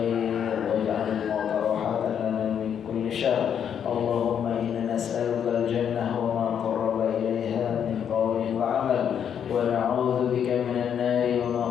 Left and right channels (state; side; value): quieter; right; 8.4 dB